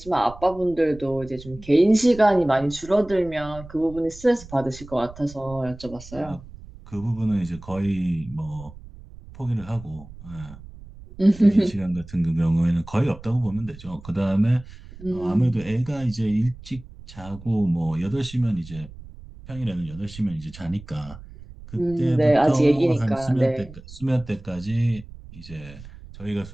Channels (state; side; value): noise; right; rumble, 17 dB below the sound